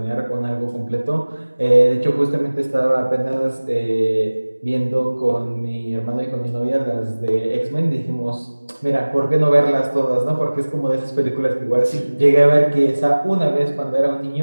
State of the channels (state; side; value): inverted; both; correlation -1.00